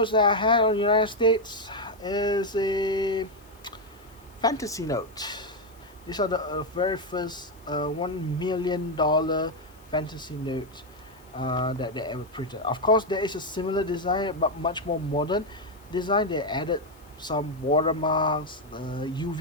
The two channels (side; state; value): left; noise; hiss, 28 dB below the sound